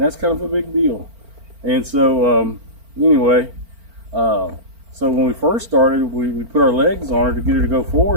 that's kind of a big deal. And so anyway, so when we first started, we put our legs on her to get her to go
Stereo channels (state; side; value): late; left; 4.4 ms